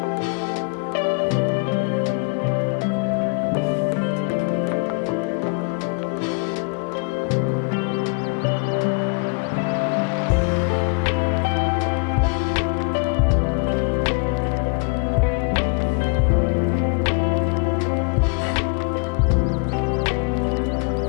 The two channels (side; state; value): right; quieter; 34.3 dB